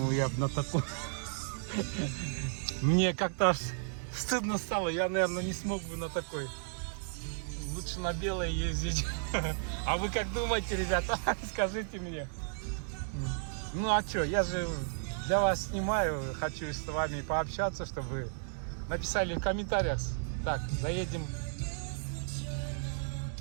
я бы на такой... Мне как-то аж стыдно стало, я, наверное, не смог бы на такой. Лучше на белое ездить. А вы как думаете, ребята? Скажите мне. Ну, а что, я же для вас снимаю, хочу с вами пообщаться, чтобы вы написали в комментариях. Так, заедем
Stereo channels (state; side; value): silent; left; digital silence